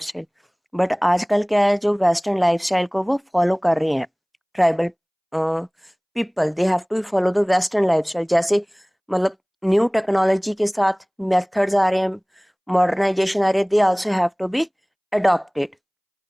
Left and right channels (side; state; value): both; identical; correlation 1.00